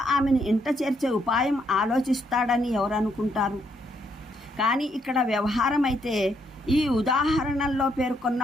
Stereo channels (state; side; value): normal; both; correlation 0.74